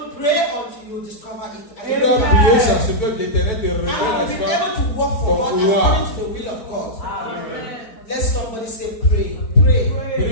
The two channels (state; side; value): late; right; 4.5 ms